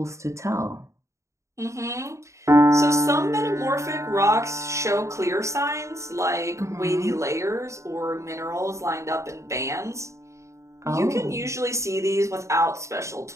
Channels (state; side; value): late; left; 0.14 ms